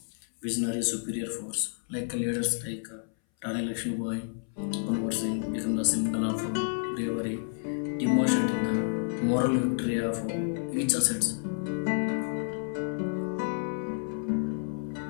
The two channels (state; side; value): silent; right; 58 dB below the other